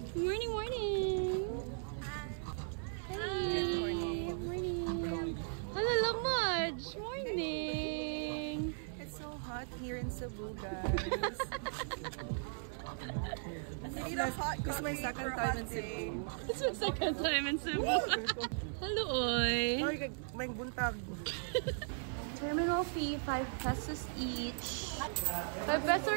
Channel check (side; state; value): left; silent; 53 dB below the other